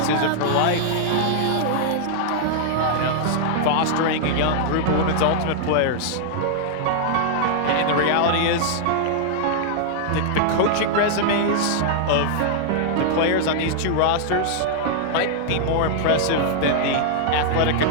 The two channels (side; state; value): both; different; correlation -0.01